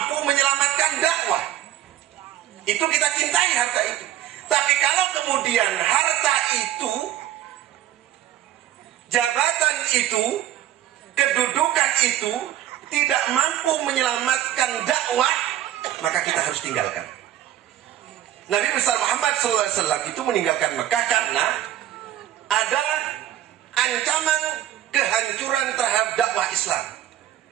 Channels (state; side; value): quieter; left; 12.5 dB